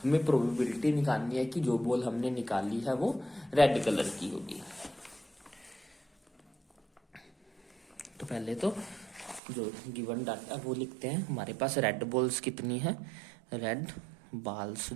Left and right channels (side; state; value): left; drops out; at 9.4 s